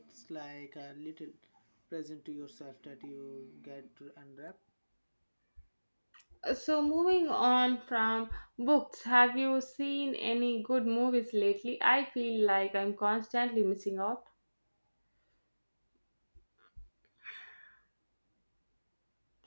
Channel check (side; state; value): both; inverted; correlation -1.00